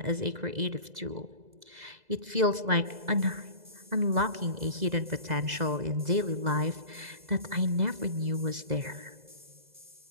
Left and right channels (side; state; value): left; late; 2.0 ms